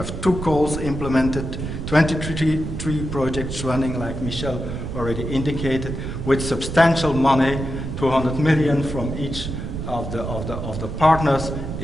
2 calls implemented, 23 projects running, like Michel already indicated, with substantial money, 200 million from each of the partners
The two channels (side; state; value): right; noise; rumble, 6 dB below the sound